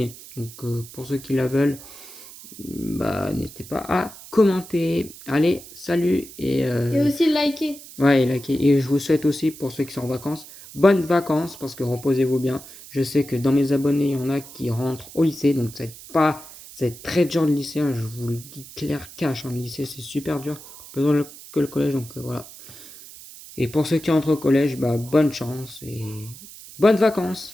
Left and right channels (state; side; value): noise; right; hiss, 17 dB below the sound